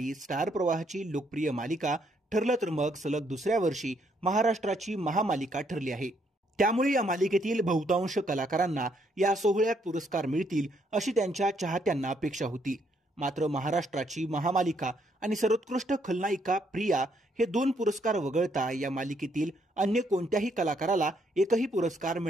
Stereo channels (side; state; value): both; normal; correlation 0.72